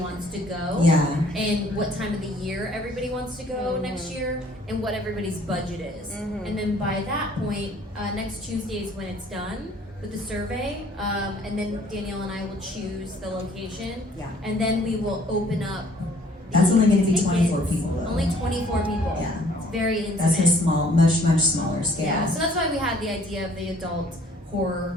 to go. Yeah. And what time of the year everybody wants to go next year, and what everybody's budget is. And then by that point, next Tuesday is when it's done with the survey, and then Danielle and I will choose the location. Yeah. And then we will open up. That's only going to be tickets. 24 people, though. Only 24 people. Yeah. It's very intimate. That's a small, much smaller scale. Yeah, so that's why we had the idea of the adult horror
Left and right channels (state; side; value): normal; both; correlation 0.58